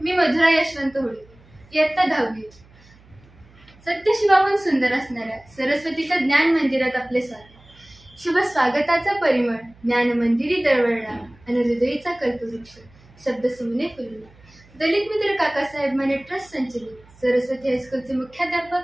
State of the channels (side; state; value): right; noise; hum, 27 dB below the sound